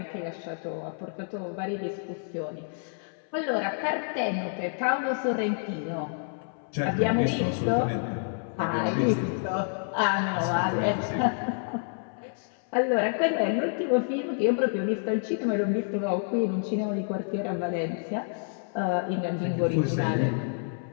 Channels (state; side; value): silent; right; 59 dB below the other